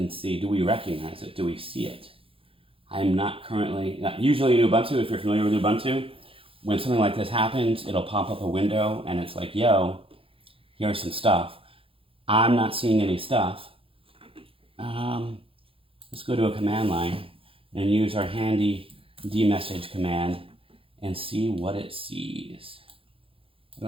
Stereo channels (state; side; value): late; left; 0.27 ms